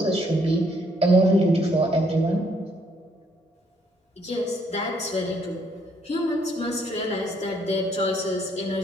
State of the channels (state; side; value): normal; both; correlation 0.68